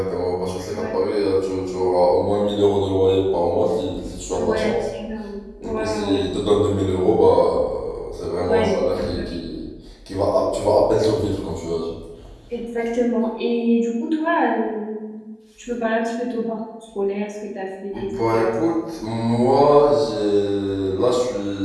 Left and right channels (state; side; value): identical; both; correlation 1.00